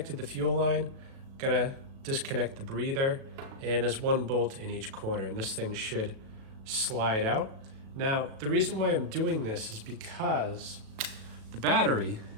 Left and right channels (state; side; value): late; left; 37 ms